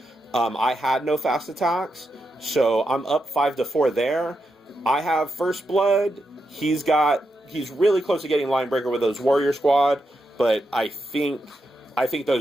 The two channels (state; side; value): normal; both; correlation 0.85